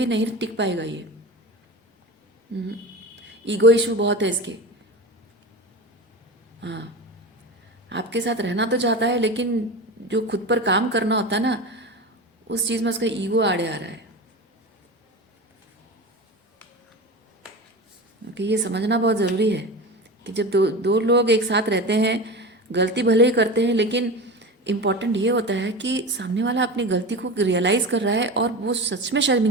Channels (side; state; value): both; normal; correlation 0.28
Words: नहीं टिक पाएगा। ये ईगो इशू बहुत है इसके। हाँ, आपके साथ रहना तो चाहता है, लेकिन जो खुद पर काम करना होता है ना, उस चीज़ में उसका ईगो आड़े आ रहा है। क्योंकि ये समझना बहुत ज़रूरी है कि जब दो लोग एक साथ रहते हैं, गलती भले ही करते हैं, लेकिन इम्पॉर्टेंट ये होता है कि सामने वाला अपनी गलती को रियलाइज़ कर रहा है और वो सच में